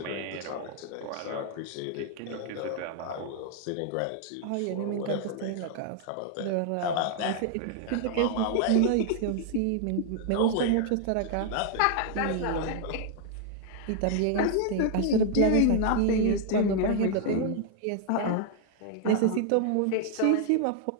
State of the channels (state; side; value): different; both; correlation 0.00